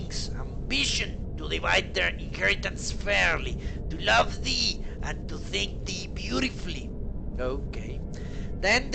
ambition to divide their inheritance fairly, to love thee and to think thee beautifully. Okay. Then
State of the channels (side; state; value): both; identical; correlation 1.00